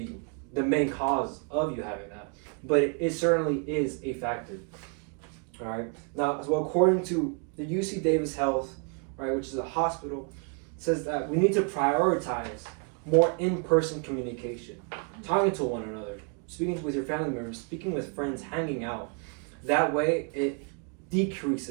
the main cause of you having that, but it certainly is a factor. All right. Now, as well, according to the UC Davis Health, right, which is a hospital, says that we need to prioritize more in-person communication, talking to one another, speaking with your family members, speaking with friends, hanging out. That way, it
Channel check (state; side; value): quieter; left; 37.4 dB